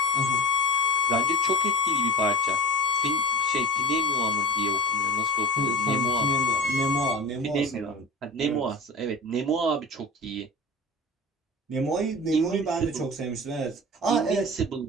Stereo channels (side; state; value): both; normal; correlation 0.34